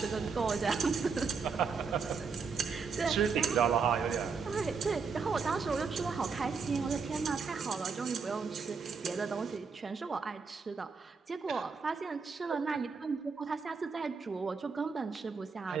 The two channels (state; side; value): quieter; left; 5.2 dB